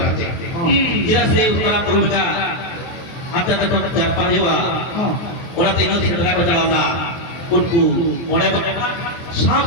ಇರಸೆ ಉತ್ತರ ಪೂರ್ವಕ ಅಂತ ತಕ್ಕ ಜರ್ಪ ಇವ ಒಳತೆ ಇನ್ನೂ ಸಿಂದರಾಗಲ್ಲ ಉಂಟು ಮೊಳೆ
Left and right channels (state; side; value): late; right; 23 ms